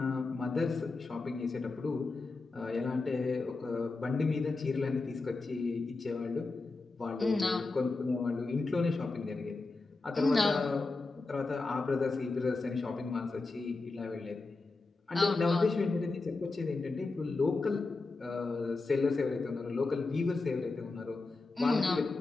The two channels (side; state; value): right; quieter; 3.6 dB